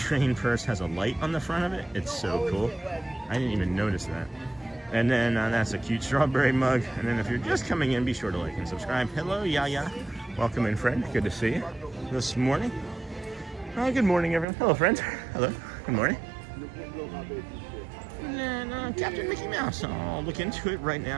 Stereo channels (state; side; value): drops out; left; at 14.5 s